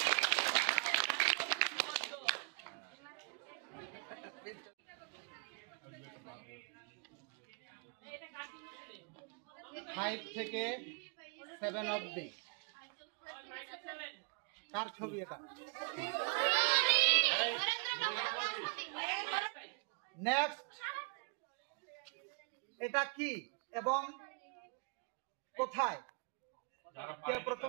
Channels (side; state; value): left; quieter; 36.9 dB